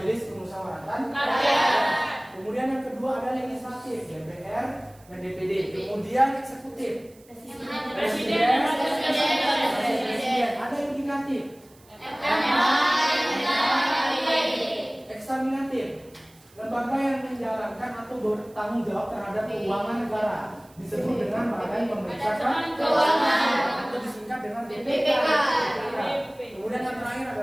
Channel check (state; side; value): noise; right; hiss, 28 dB below the sound